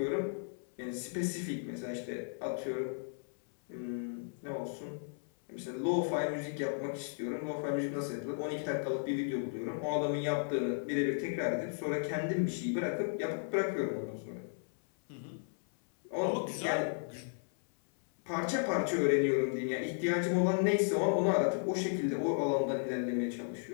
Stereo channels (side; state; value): right; silent; 55 dB below the other